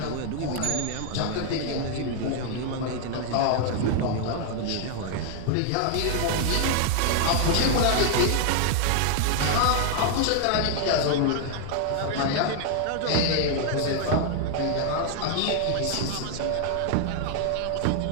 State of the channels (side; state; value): both; different; correlation 0.00